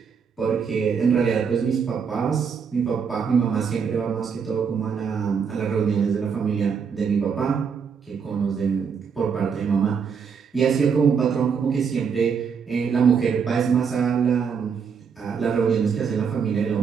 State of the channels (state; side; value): quieter; left; 6.4 dB